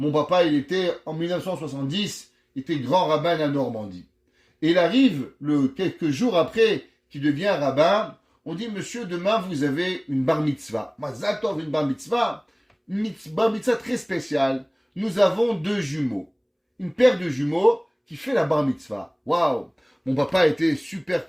papa, en 1970, il était grand rabbin à Normandie. Et il arrive, quelques jours après qu'il devient rabbin, on dit, monsieur, demain, vous avez une bar mitzvah. Mazal tov, une bar mitzvah. Une bar mitzvah très spéciale. Nous avons 2 jumeaux. Une paire de jumeaux qui fait la bar mitzvah. Waouh! Mon papa était super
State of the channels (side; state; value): both; identical; correlation 1.00